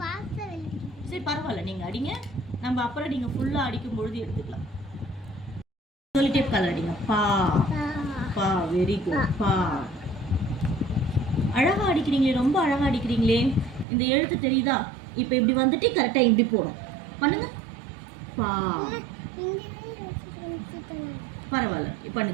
சரி பரவாயில்ல, நீங்க அடிங்க. நம்ம அப்புறம் நீங்க ஃபுல்லா அடிக்கும் பொழுது எடுத்துக்கலாம். சொல்லிட்டே கலர் அடிங்க. பா. பா. Very good. பா. அழகா அடிக்கிறீங்களே, ரொம்ப அழகா அடிக்கிறீங்களே. இந்த எழுத்து தெரியுதா? இப்போ இப்படி வந்துட்டு கரெக்டா இப்படி போடும். பண்ணுங்க. பா. பரவாயில்ல,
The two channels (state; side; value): drops out; left; at 13.9 s